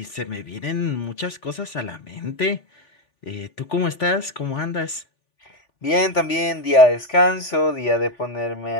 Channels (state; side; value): late; right; 3.5 ms